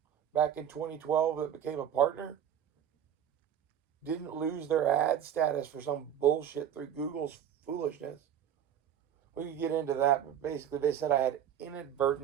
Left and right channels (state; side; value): quieter; left; 9.6 dB